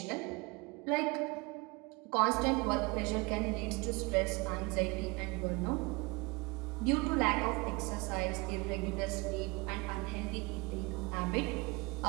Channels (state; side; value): quieter; left; 26.6 dB